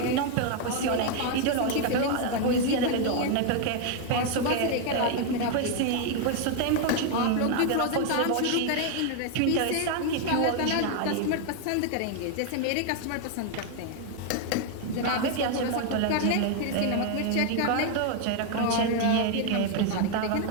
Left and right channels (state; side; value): different; both; correlation 0.01